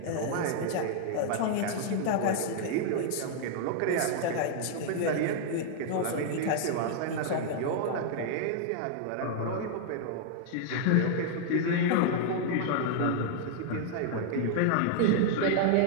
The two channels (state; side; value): different; both; correlation -0.01